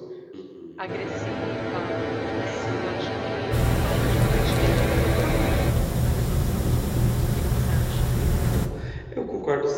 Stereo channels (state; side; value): identical; both; correlation 1.00